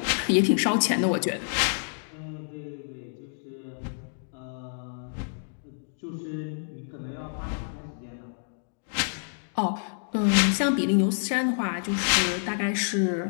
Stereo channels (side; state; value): right; silent; digital silence